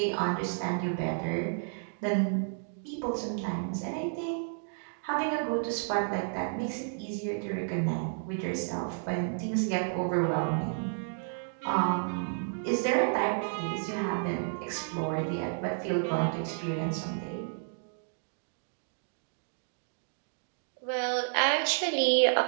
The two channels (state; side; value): silent; left; digital silence